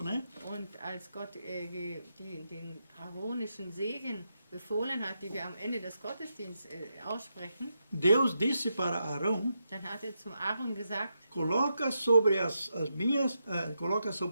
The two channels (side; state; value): both; inverted; correlation -0.84